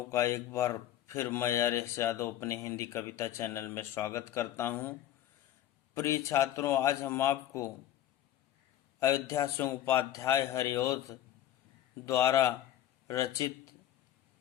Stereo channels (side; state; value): right; quieter; 12.2 dB